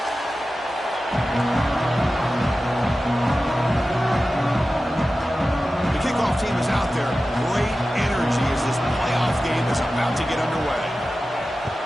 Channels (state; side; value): normal; both; correlation 0.94